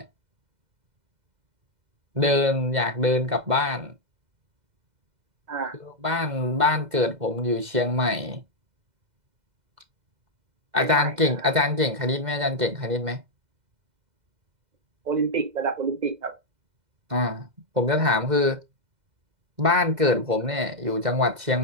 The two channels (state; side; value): late; left; 2.0 ms